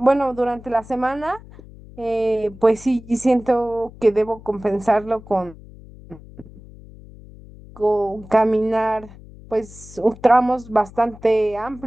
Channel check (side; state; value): left; noise; hum, 19 dB below the sound